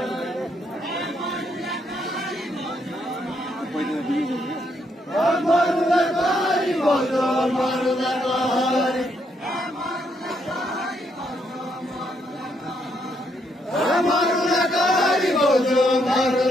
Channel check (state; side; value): normal; both; correlation 0.75